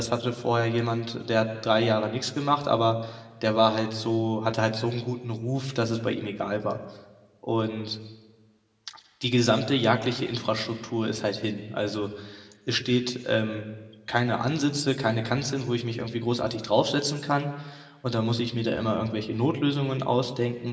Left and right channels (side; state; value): both; identical; correlation 1.00